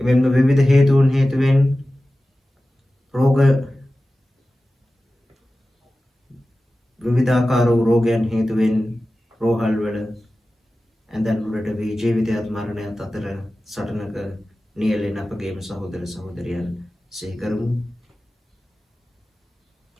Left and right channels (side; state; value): both; normal; correlation 0.95